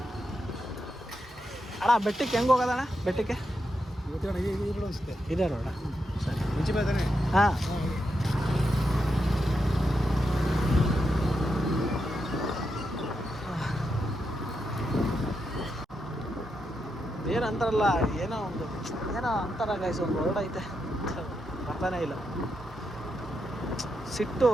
ಅಣ್ಣ? ಬೆಟ್ಟಕ್ಕೆ ಹೆಂಗೆ ಹೋಗೋದಣ್ಣ? ಬೆಟ್ಟಕ್ಕೆ ಇದೆ ರೋಡ? ಸರಿ, ಹಾಂ. ಏನಂತಾರಲ್ಲ, ಏನೋ ಅಂತಾರ ಗೈಸ್, ಒಂದು ವರ್ಡ್ ಐತೆ, ಬರ್ತಾನೆ ಇಲ್ಲ. ಸಿಟ್ಟು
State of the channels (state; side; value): normal; both; correlation 0.84